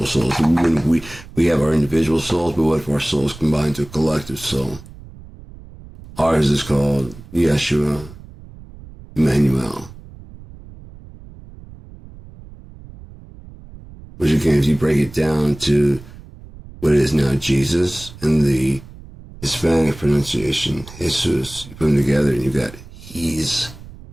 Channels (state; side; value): noise; right; rumble, 18 dB below the sound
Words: souls. We have our individual souls, but what if our souls combine to a collective soul? Ours is called Yeshua, Emmanuel. Which again, if you break it down to what it is now, Jesus, and the Hispanic pronunciation, Jesus, you put them together and you got He's